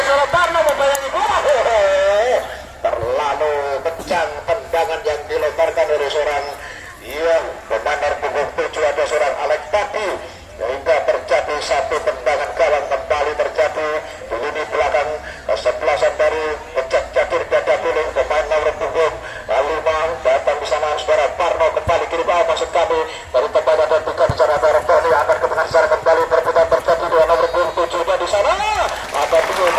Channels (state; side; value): identical; both; correlation 1.00